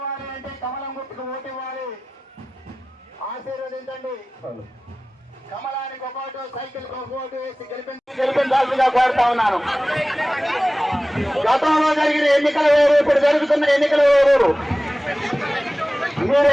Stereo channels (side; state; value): both; normal; correlation 0.97